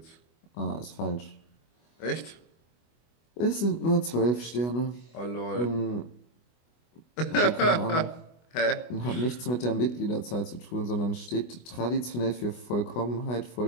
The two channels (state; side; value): late; right; 24 ms